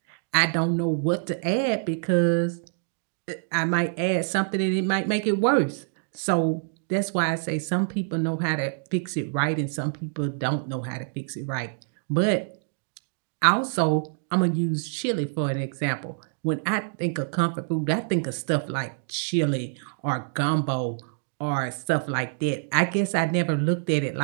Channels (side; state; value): left; silent; digital silence